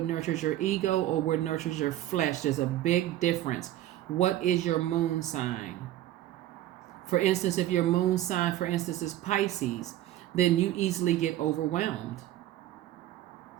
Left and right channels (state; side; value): quieter; left; 13.6 dB